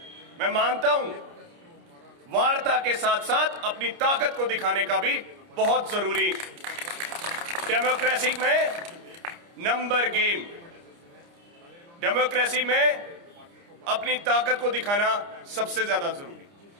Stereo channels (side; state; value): left; late; 29 ms